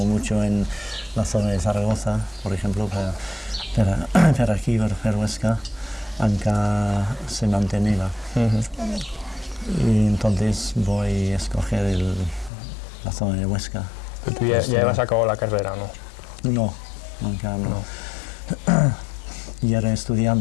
mucho en la zona de Zaragoza, por ejemplo, pero aquí, para Huesca, Ankara se mantenía. Y entonces voy a escoger la zona de Huesca. Pero tú ya has acabado la carrera, ¿no? No, nunca no. Yo era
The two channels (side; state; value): right; drops out; at 12.5 s